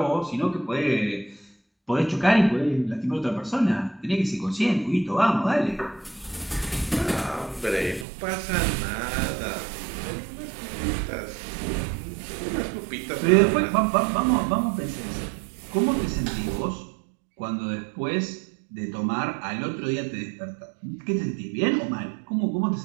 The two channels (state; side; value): drops out; left; at 8.1 s